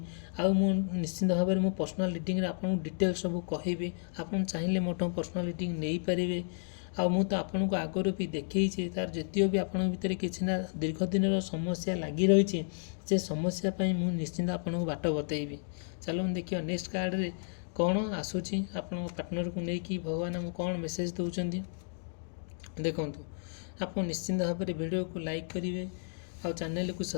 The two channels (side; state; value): right; silent; digital silence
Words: ଆଉ ମୁଁ ନିଶ୍ଚିନ୍ତ ଭାବରେ ମୁଁ ପର୍ସନାଲ୍ ରିଡ଼ିଂରେ ଆପଣଙ୍କୁ ଡିଟେଲ୍ ସବୁ କହିବି। ଆପଣ ଚାହିଁଲେ ମୋଠୁ ପର୍ସନାଲ୍ ରିଡ଼ିଂ ନେଇପାରିବେ। ଆଉ ମୁଁ ତ ଆପଣଙ୍କୁ ଆଗରୁ ବି ଦେଖେଇଛି, ତା'ର ଯେତିକ ବି ଆପଣଙ୍କ ଭିତରେ କିଛି ନା ଦୀର୍ଘ ଦିନର ସମସ୍ୟା ଲାଗି ରହିଛି, ସେ ସମସ୍ୟା ପାଇଁ ମୁଁ ନିଶ୍ଚିନ୍ତ ଆପଣଙ୍କୁ ବାଟ ବତେଇବି। ଚାଲନ୍ତୁ ଦେଖିବା ନେକ୍ସଟ କାର୍ଡ଼ରେ କ'ଣ ଆସୁଛି, ଆପଣଙ୍କ ପାର୍ଟନରକୁ ନେଇକି ଭଗବାନ ଆମକୁ କ'ଣ ମେସେଜ୍ ଦେଉଛନ୍ତି। ଦେଖନ୍ତୁ, ଆପଣ ନିଶ୍ଚିନ୍ତ ଭାବରେ ଭିଡ଼ିଓକୁ ଲାଇକ୍ କରିବେ ଆଉ ଚ୍ୟାନେଲକୁ